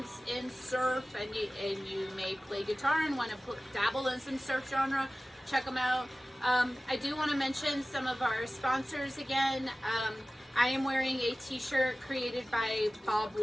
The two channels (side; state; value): both; normal; correlation 0.97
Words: in surf, and you may play guitar and want to dabble in some surf genre. Check them out. I do want to mention some of our sponsors again. I am wearing a t-shirt created by Bob